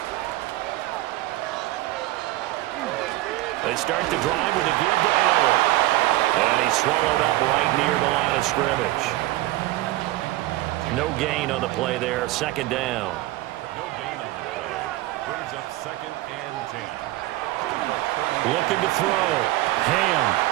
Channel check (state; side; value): quieter; left; 17.5 dB